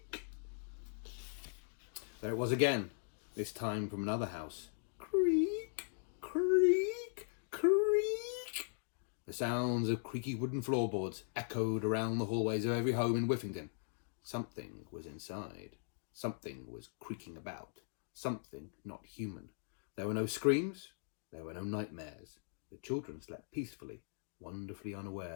There it was again, this time from another house. Creak, creak, creak. The sounds of creaky wooden floorboards echoed around the hallways of every home in Whiffington. Something was inside. Something was creaking about. Something not human. There were no screams. There were no nightmares. The children slept peacefully, wonderfully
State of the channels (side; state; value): right; silent; digital silence